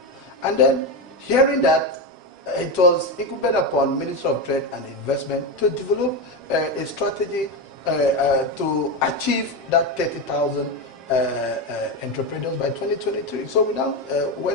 And then hearing that, it was incumbent upon Minister of Trade and Investment to develop a strategy to achieve that 30,000 entrepreneurs by 2023. So we now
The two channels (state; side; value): normal; both; correlation 0.14